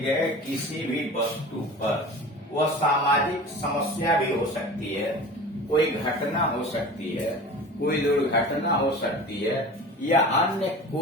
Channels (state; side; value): normal; both; correlation 0.37